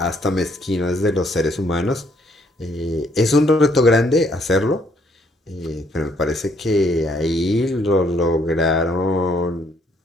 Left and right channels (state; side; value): normal; both; correlation 0.68